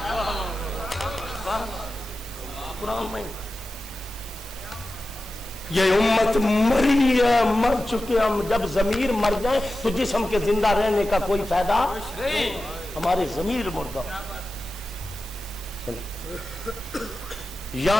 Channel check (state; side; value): normal; both; correlation 0.93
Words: قرآن میں یہ امت مری ہے مر چکے ہم جب ضمیر مر جائے تو جسم کے زندہ رہنے کا کوئی فائدہ ہمارے ضمیر مردہ